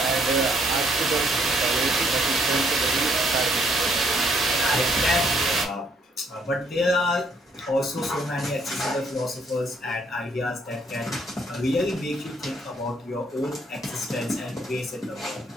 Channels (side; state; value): both; normal; correlation 0.68